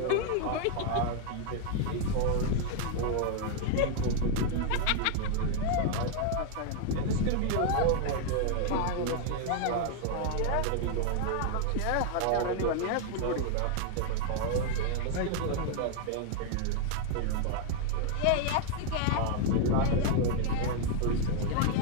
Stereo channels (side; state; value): both; different; correlation 0.00